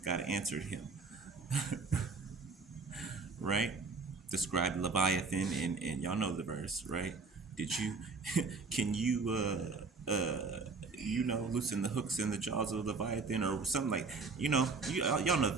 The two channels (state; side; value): quieter; left; 4.3 dB